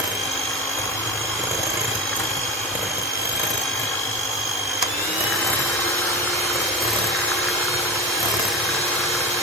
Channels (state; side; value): normal; both; correlation 0.26